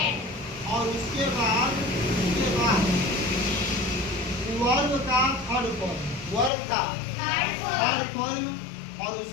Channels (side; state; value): right; drops out; at 6.5 s